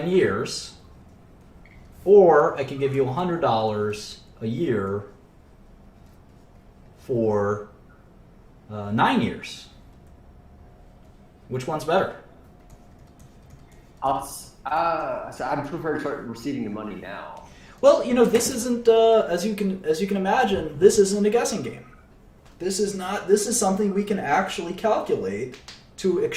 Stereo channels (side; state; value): both; identical; correlation 1.00